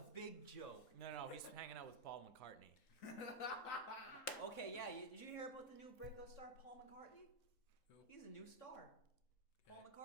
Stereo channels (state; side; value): late; right; 3.8 ms